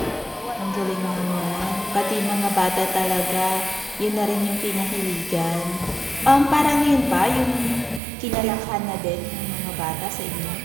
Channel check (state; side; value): drops out; left; at 8.0 s